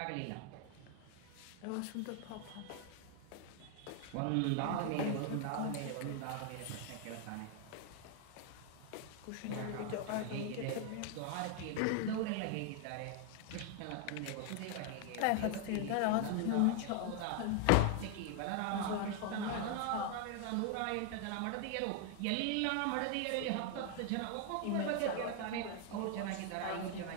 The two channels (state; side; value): different; both; correlation 0.00